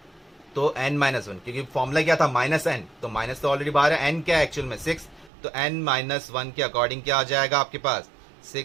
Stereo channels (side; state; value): left; drops out; at 5.3 s